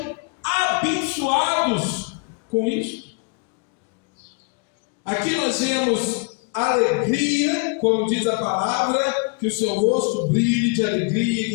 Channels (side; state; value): right; quieter; 36.4 dB